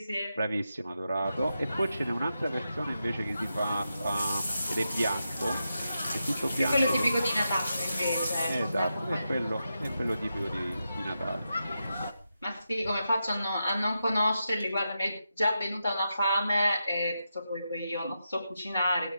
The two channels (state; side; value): inverted; both; correlation -0.87